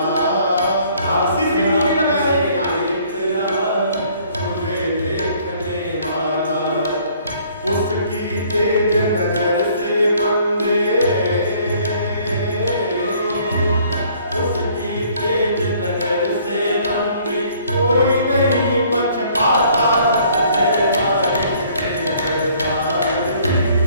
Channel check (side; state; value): both; inverted; correlation -0.59